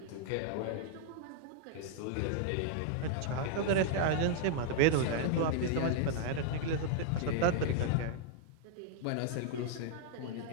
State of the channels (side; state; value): both; different; correlation -0.01